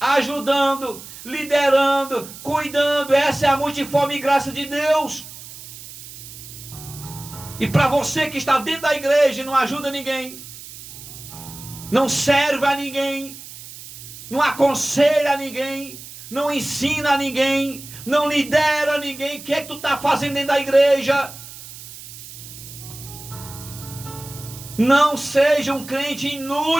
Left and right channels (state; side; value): noise; right; hiss, 15 dB below the sound